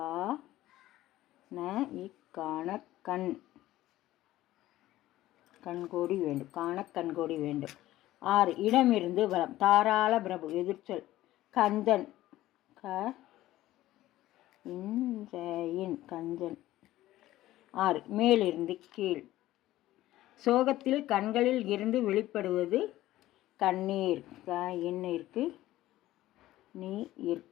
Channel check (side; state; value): right; quieter; 15.4 dB